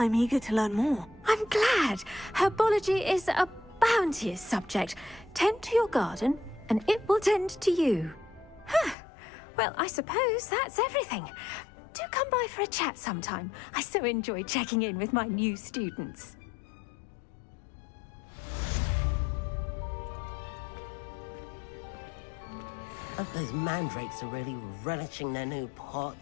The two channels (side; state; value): right; drops out; at 9.0 s